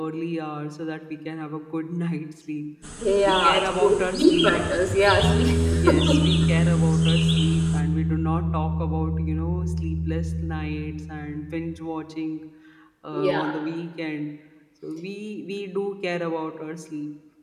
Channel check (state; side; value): identical; both; correlation 1.00